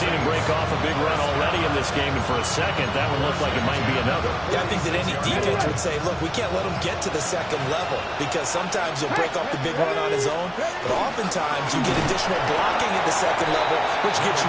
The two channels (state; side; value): identical; both; correlation 1.00